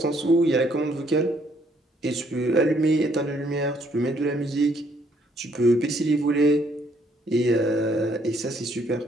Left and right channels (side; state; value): both; normal; correlation 0.68